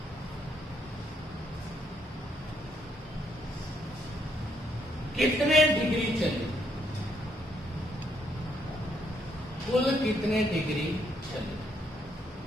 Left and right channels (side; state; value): both; normal; correlation 0.72